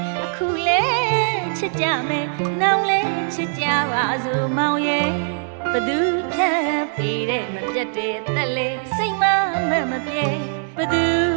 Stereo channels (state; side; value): silent; left; digital silence